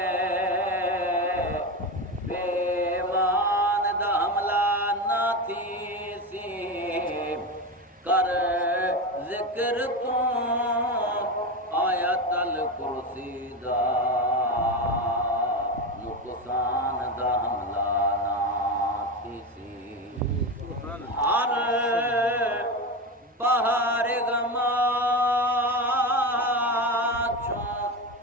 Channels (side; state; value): both; normal; correlation 0.19